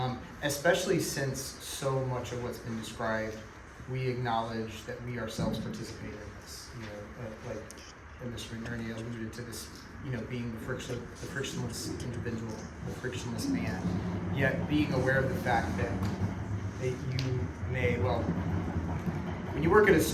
especially since so much of what's been described, we acknowledge that we ourselves participate in this. You know, like and Mr. McNerney alluded to this, you know, being the frictionless individual, the frictionless man, yet being aware of the fact that you may, well, when you work at a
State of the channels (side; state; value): both; identical; correlation 1.00